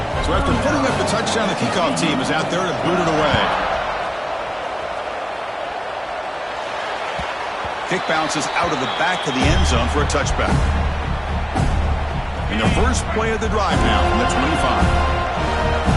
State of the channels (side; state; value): both; identical; correlation 1.00